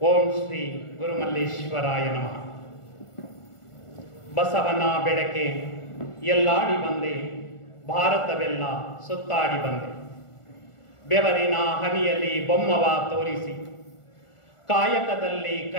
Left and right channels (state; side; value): late; right; 1.4 ms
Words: ಓಂ ಶ್ರೀ ಗುರುಮಲ್ಲೇಶ್ವರಾಯ ನಮಃ. ಬಸವನ ಬೆಳಕೆ ಎಲ್ಲಾಡಿ ಬಂದೆ, ಭಾರತವೆಲ್ಲ ಸುತ್ತಾಡಿ ಬಂದೆ. ಬೆವರಿನ ಹನಿಯಲ್ಲಿ ಬೊಮ್ಮವ ತೋರಿಸಿ, ಕಾಯಕದಲ್ಲಿ